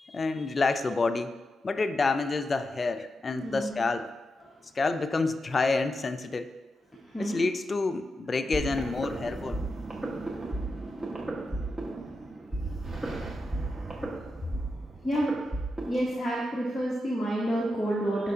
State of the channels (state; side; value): normal; both; correlation 0.88